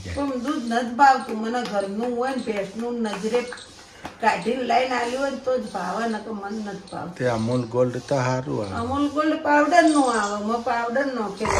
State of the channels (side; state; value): both; identical; correlation 1.00